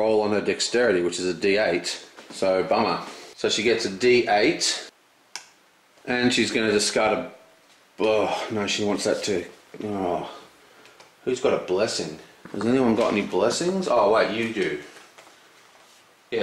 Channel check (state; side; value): identical; both; correlation 1.00